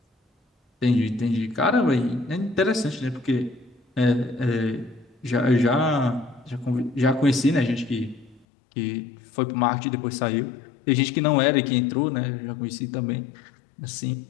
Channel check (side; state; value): right; drops out; at 8.5 s